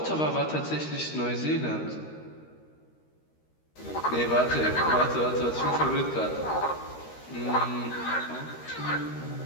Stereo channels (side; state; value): right; late; 13 ms